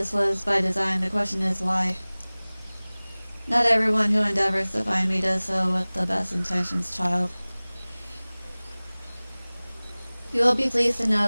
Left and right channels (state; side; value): inverted; both; correlation -1.00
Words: was by design. The question is why. Not everyone who endeavors to find me does so with the best intentions, child. You will be pleased to